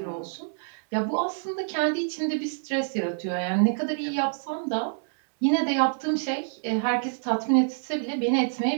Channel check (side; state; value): left; silent; digital silence